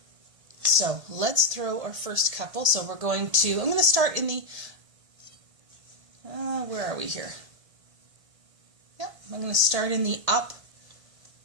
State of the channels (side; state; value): left; late; 1.6 ms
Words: So let's throw our first couple. So I'm going to start in the, where are we here? Yep, I'm going to start in the up.